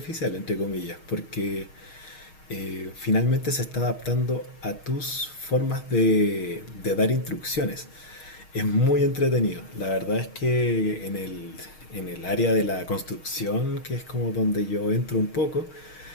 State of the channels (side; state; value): right; late; 6.4 ms